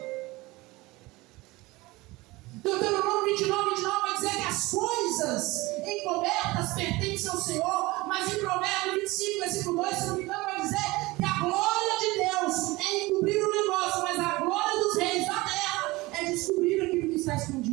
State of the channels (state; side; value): quieter; left; 21.3 dB